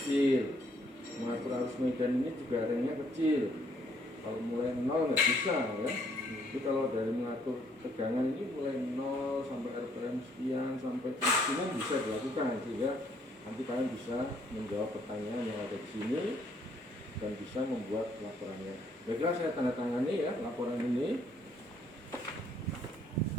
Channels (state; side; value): normal; both; correlation 0.66